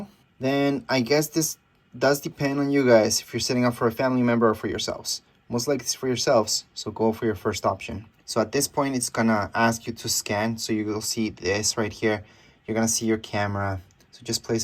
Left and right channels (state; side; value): identical; both; correlation 1.00